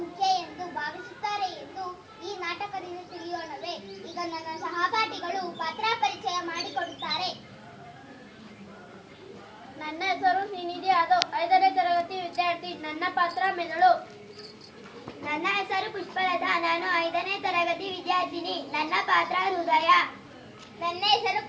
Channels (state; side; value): identical; both; correlation 1.00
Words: ಮುಖ್ಯ ಎಂದು ಭಾವಿಸುತ್ತಾರೆ ಎಂದು ಈ ನಾಟಕದಿಂದ ತಿಳಿಯೋಣವೇ? ಈಗ ನನ್ನ ಸಹಪಾಠಿಗಳು ಪಾತ್ರ ಪರಿಚಯ ಮಾಡಿಕೊಡುತ್ತಾರೆ. ನನ್ನ ಹೆಸರು ಶ್ರೀನಿಧಿ ಯಾದವ್, 5ನೇ ತರಗತಿ ವಿದ್ಯಾರ್ಥಿ. ನನ್ನ ಪಾತ್ರ ಮೆದುಳು. ನನ್ನ ಹೆಸರು ಪುಷ್ಪಲತಾ, ನಾನು 5ನೇ ತರಗತಿ ವಿದ್ಯಾರ್ಥಿನಿ. ನನ್ನ ಪಾತ್ರ ಹೃದಯ. ನನ್ನ ಹೆಸರು